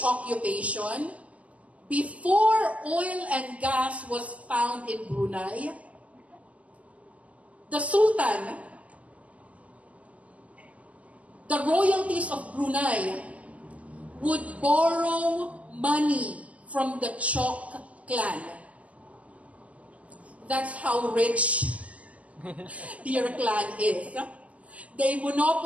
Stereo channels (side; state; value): left; late; 0.070 ms